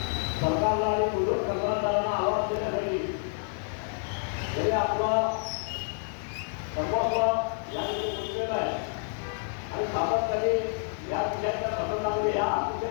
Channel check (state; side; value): silent; right; digital silence